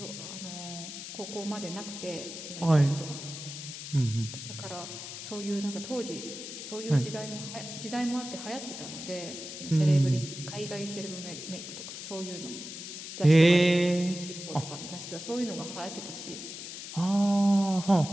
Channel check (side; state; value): left; noise; hiss, 9 dB below the sound